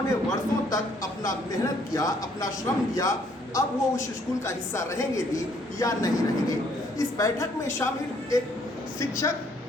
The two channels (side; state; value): both; normal; correlation 0.65